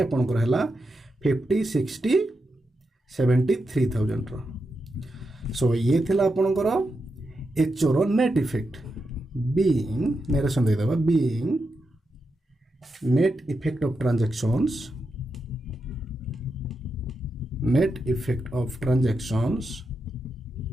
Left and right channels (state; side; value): normal; both; correlation 0.86